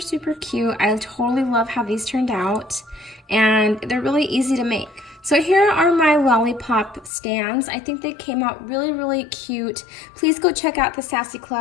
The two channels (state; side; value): drops out; right; at 7.1 s